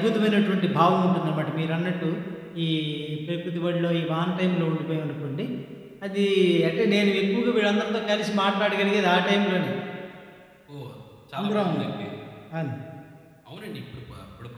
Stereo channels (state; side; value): identical; both; correlation 1.00